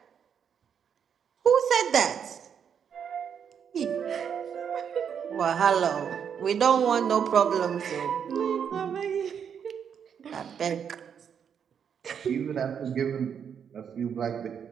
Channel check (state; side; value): quieter; left; 7.7 dB